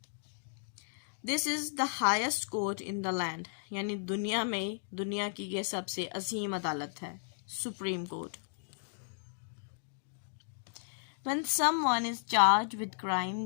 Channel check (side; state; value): right; silent; digital silence